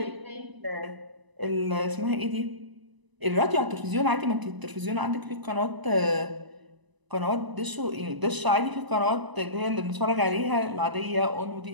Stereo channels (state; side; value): late; left; 1.0 ms